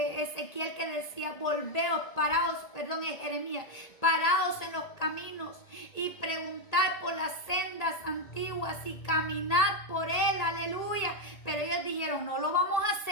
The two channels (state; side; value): late; right; 1.8 ms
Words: que decía: volveos, paraos, perdón, es Jeremías: paraos en los caminos y preguntad por las sendas antiguas y caminad por él, aleluya. Pero ellos dijeron: no lo vamos a